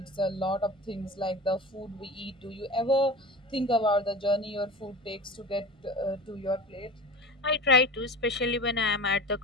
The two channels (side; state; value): both; normal; correlation 0.33